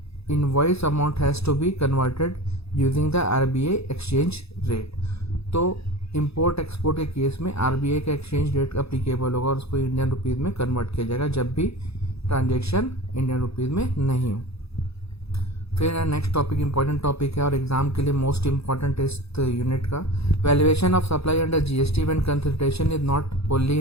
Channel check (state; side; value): late; right; 0.78 ms